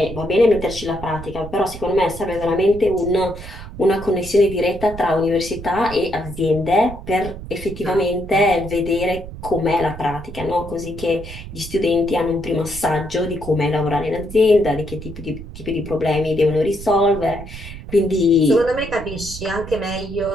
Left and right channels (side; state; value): right; noise; rumble, 12 dB below the sound